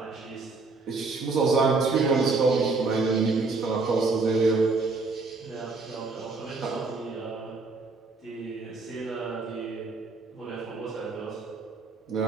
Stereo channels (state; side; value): quieter; left; 3.9 dB